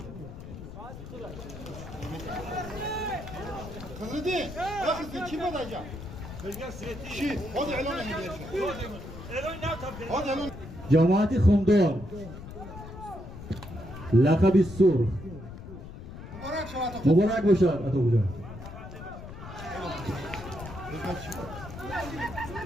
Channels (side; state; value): left; noise; rumble, 12 dB below the sound